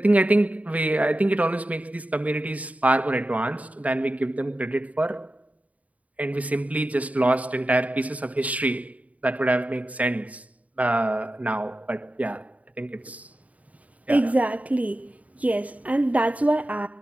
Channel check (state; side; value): late; left; 0.070 ms